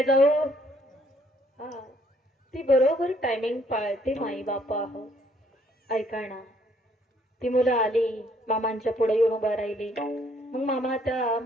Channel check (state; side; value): normal; both; correlation 0.66